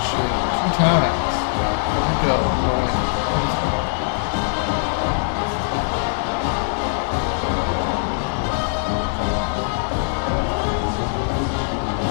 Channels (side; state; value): right; silent; 65 dB below the other